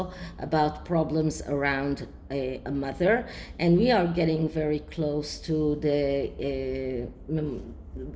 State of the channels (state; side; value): identical; both; correlation 1.00